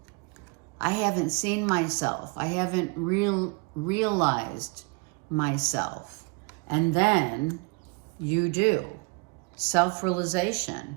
I haven't seen myself. I haven't realized myself. And then You do.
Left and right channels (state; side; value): quieter; left; 30.3 dB